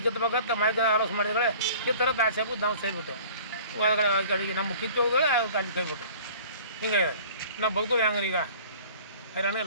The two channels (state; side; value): inverted; both; correlation -0.48